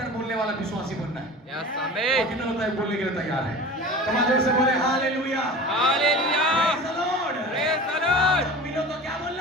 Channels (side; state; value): both; normal; correlation 0.36